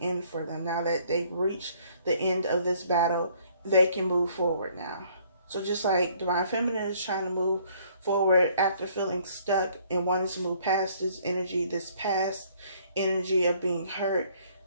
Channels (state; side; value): inverted; both; correlation -0.62